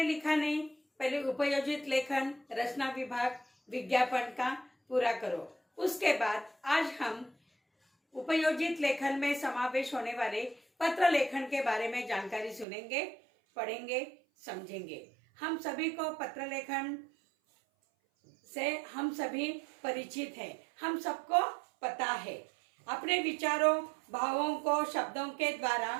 लिखा नहीं, पहले उपयोजित लेखन, रचना विभाग, विज्ञापन का पूरा करो। उसके बाद आज हम उपयोजित लेखन में समावेश होने वाले पत्र लेखन के बारे में जानकारी सुनेंगे, पढ़ेंगे, समझेंगे। हम सभी को पत्र लेखन से हम सभी परिचित हैं। हम सबको पता है अपने विचारों, भावों को शब्दों के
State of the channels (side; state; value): left; drops out; at 12.7 s